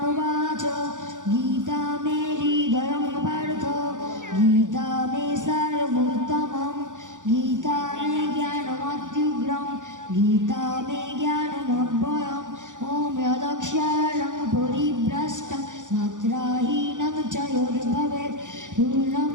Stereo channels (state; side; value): late; left; 0.87 ms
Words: বাচ গীতা মে হৃদয়ং পার্থ গীতা মে সারভূতমম গীতা মে জ্ঞানমত্যুগ্রম গীতা মে জ্ঞানমব্যয়ম ওম যদক্ষরং পরিভ্রষ্টং মাত্রাহীনং চ যদ্ভবেৎ পূর্ণং